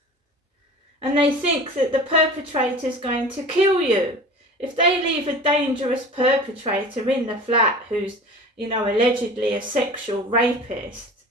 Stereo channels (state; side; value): normal; both; correlation 0.38